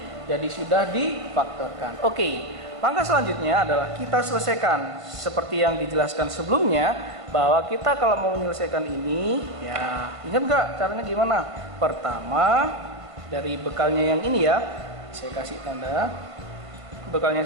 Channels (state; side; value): late; left; 1.5 ms